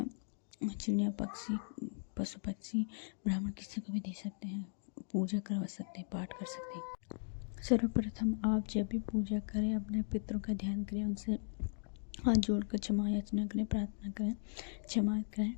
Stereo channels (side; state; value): right; silent; digital silence